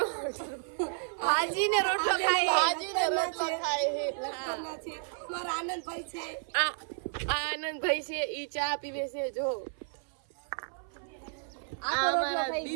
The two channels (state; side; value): silent; left; 57 dB below the other